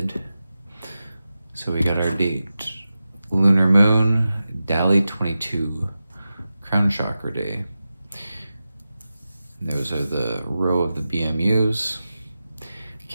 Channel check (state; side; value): inverted; both; correlation -0.93